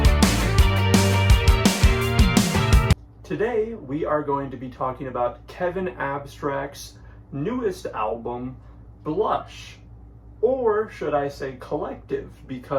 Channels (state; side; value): identical; both; correlation 1.00